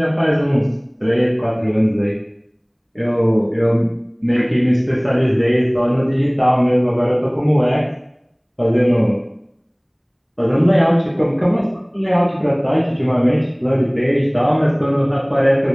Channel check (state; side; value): identical; both; correlation 1.00